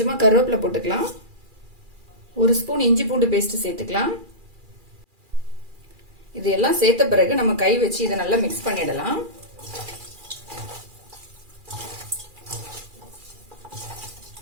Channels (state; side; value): late; left; 2.4 ms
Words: கருவேப்பிலை போட்டுக்கலாம். 1 ஸ்பூன் இஞ்சி பூண்டு பேஸ்ட் சேர்த்துக்கலாம். இது எல்லாம் சேர்த்த பிறகு நம்ம கை வச்சு இதை நல்லா மிக்ஸ் பண்ணிடலாம்.